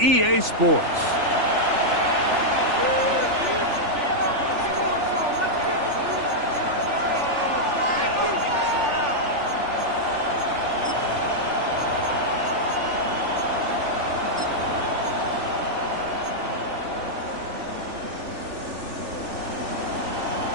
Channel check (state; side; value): late; left; 3.4 ms